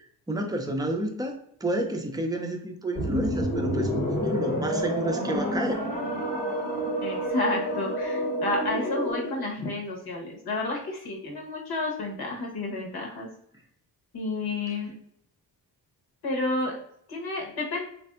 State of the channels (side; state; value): both; normal; correlation 0.22